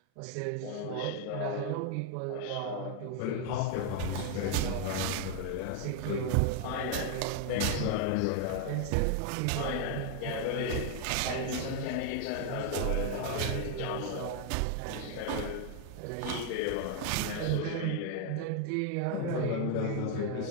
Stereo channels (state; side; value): different; both; correlation 0.00